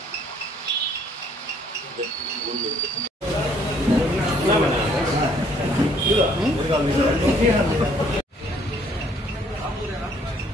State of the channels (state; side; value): normal; both; correlation 0.63